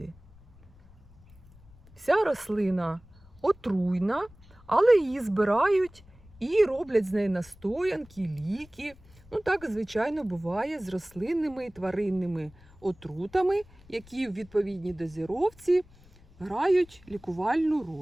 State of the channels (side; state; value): left; noise; rumble, 25 dB below the sound